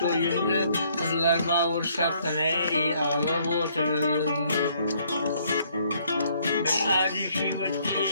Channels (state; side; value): inverted; both; correlation -0.65